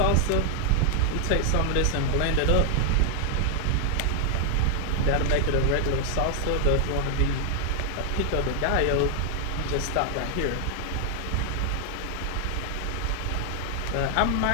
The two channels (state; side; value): different; both; correlation 0.00